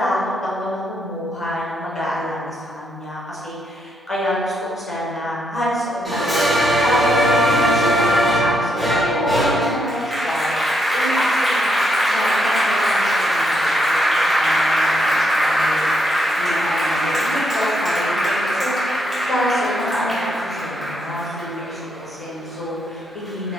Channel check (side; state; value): both; normal; correlation 0.77